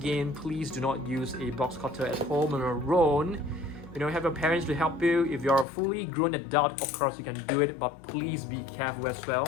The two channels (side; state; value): right; drops out; at 5.7 s